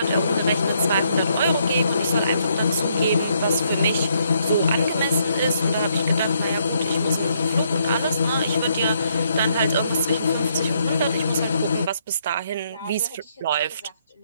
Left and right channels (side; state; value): both; inverted; correlation -0.72